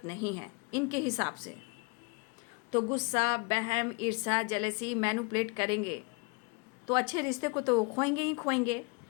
नहीं है इनके हिसाब से। तो गुस्सा, बहम, ईर्ष्या, जेलसी मैनिपुलेट करेंगे तो अच्छे रिश्ते को तो खोएंगे ही खोएंगे।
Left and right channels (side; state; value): right; quieter; 31.9 dB